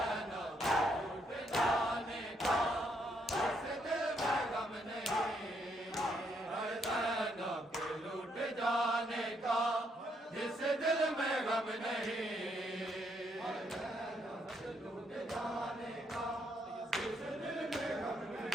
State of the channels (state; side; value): normal; both; correlation 0.74